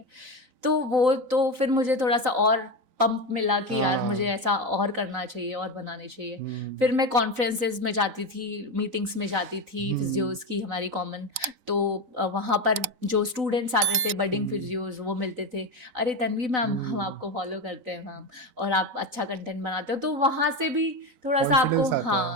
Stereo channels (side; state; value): left; late; 4.0 ms